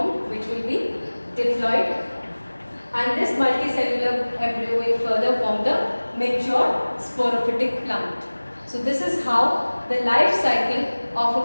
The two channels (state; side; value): inverted; both; correlation -1.00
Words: which will be diploid. And this multicellular embryo will further form the mature sporophytic plant. So this is how the life cycle of